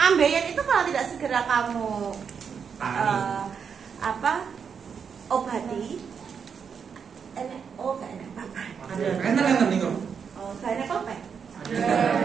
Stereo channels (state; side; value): quieter; left; 6.6 dB